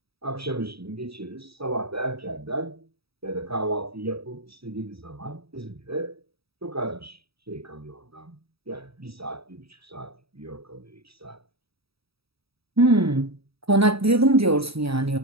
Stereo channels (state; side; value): late; left; 0.77 ms